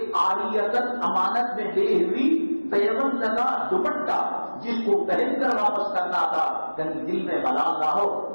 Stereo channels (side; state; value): both; inverted; correlation -1.00